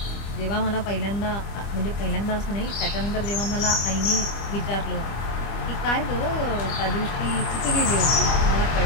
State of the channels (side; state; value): right; late; 25 ms